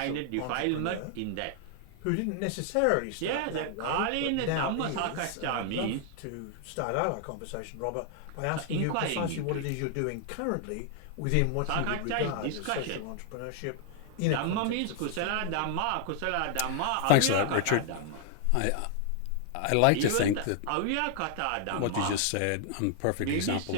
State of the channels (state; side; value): different; both; correlation 0.00